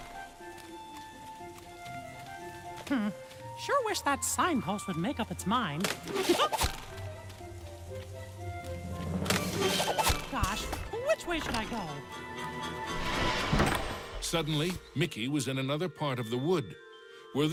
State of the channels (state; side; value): identical; both; correlation 1.00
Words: Sure wish that signpost would make up its mind. Gosh, which way should I go? Suddenly, Mickey was in another part of the wood. Were